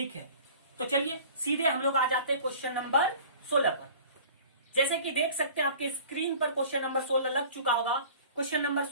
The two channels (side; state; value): both; inverted; correlation -0.45